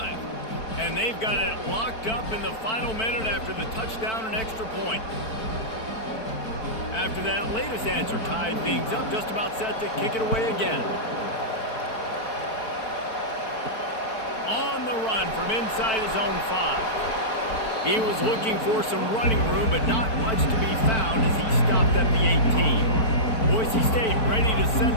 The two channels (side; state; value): right; late; 4.3 ms